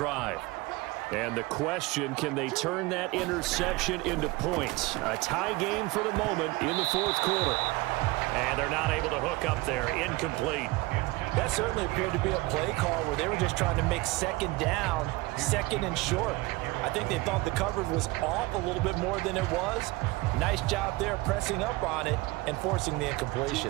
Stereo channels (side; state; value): left; quieter; 21.8 dB